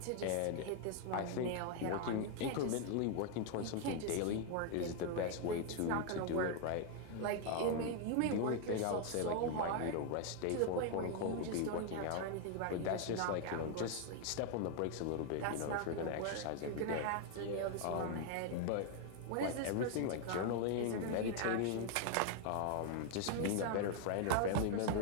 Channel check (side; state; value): both; different; correlation 0.00